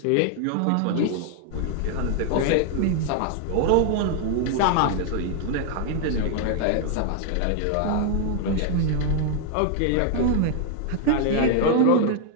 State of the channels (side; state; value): both; different; correlation 0.00